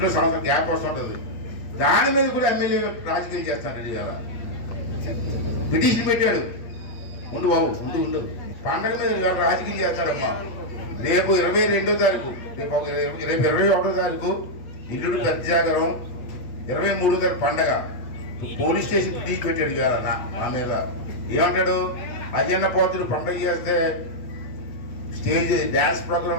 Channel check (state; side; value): late; right; 8.6 ms